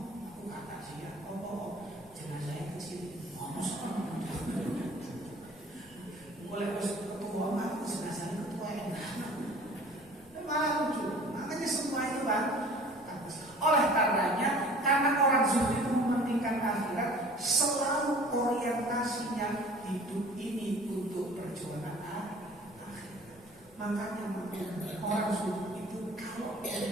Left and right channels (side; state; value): both; normal; correlation 0.47